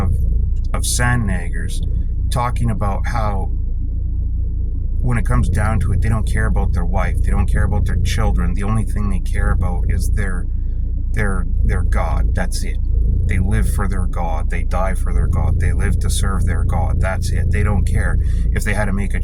sandnaggers talking about how, when it comes down to it, they don't care about their wife. They don't care about their children. The only thing they care about is their God. That's it. They live for their God. They die for their God. They live to serve their God. That's it. They don't care if they had to make a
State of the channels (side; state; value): both; identical; correlation 1.00